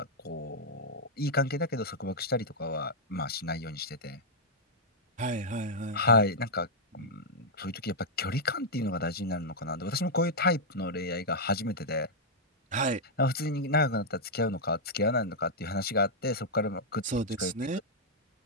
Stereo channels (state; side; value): normal; both; correlation -0.06